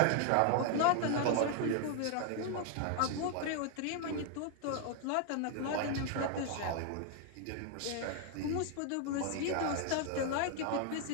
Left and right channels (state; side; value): different; both; correlation 0.00